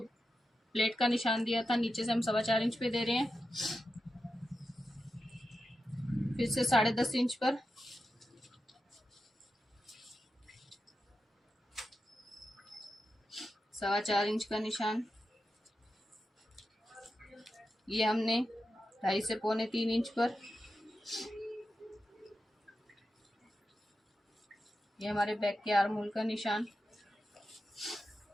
का निशान दिया था, नीचे से हम 4.25 इंच पे दे रहे हैं। फिर से 10.5 इंच पर 4.25 इंच का निशान। ये हमने 2.5 से 2.25 इंच पर, ये हमारे बैक के आर्म होल का निशान।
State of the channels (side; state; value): both; normal; correlation 0.90